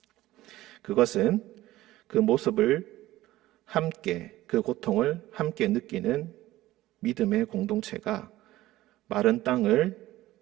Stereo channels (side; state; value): left; quieter; 16.2 dB